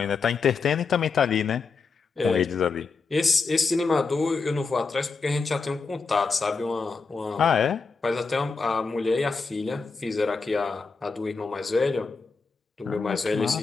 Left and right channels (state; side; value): quieter; right; 4.6 dB